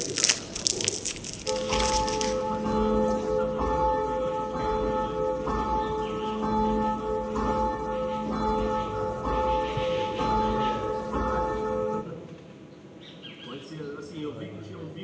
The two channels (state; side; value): identical; both; correlation 1.00